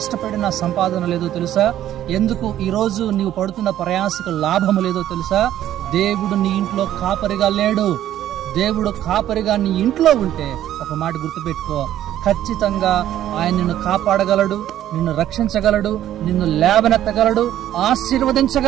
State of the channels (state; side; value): quieter; left; 12.2 dB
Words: సంపాదన లేదో తెలుసా? ఎందుకు ఈరోజు నీవు పడుతున్న ప్రయాసకు లాభము లేదో తెలుసా? దేవుడు నీ ఇంట్లో కాపరిగా లేడు. దేవుడు కాపరిగా నీ ఇంట్లో ఉంటే ఒక మాట గుర్తుపెట్టుకో, ఖచ్చితంగా ఆయన నిన్ను కాపాడగలడు, నిన్ను రక్షించగలడు, నిన్ను లేవనెత్తగలడు,